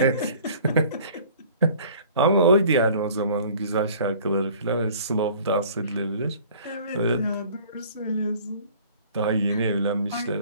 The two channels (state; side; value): inverted; both; correlation -0.50